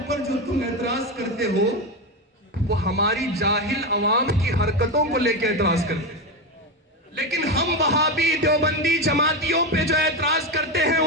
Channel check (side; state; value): both; normal; correlation 0.14